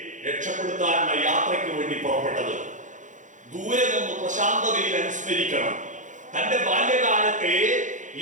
രക്ഷപ്പെടുത്താനുള്ള യാത്രയ്ക്ക് വേണ്ടി പുറപ്പെട്ടത്. ദൂരെ നിന്ന് പ്രശാന്തതയിൽ അനുസ്മരിക്കണം. തന്റെ ബാല്യകാലത്തെ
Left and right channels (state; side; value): late; left; 0.36 ms